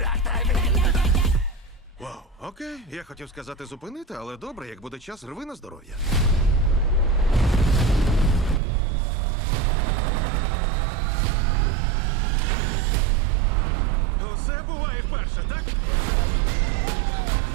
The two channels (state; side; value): drops out; left; at 8.6 s